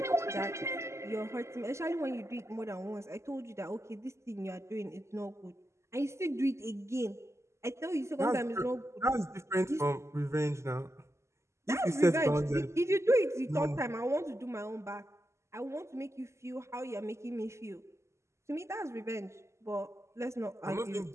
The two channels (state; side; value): late; left; 0.13 ms